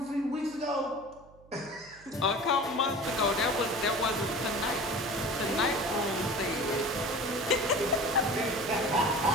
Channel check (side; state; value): right; noise; hum, 25 dB below the sound